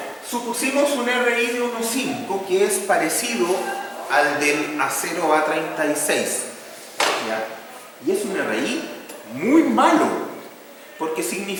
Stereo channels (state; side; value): identical; both; correlation 1.00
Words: supusimos un RI de 1,5 que es parecido al del acero A36. ¿Ya? Y es un RI muy malo, porque